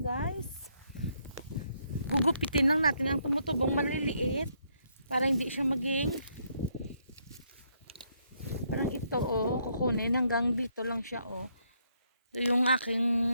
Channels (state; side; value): inverted; both; correlation -0.73